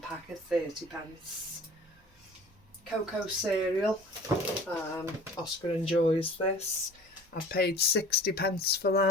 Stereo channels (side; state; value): both; normal; correlation 0.45